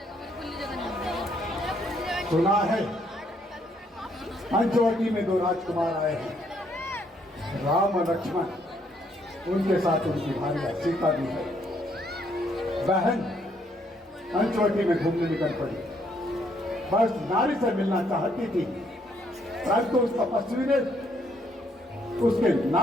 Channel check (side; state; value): both; normal; correlation 0.70